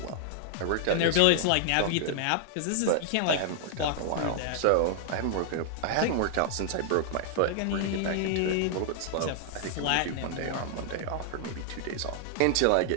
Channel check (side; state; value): both; different; correlation -0.01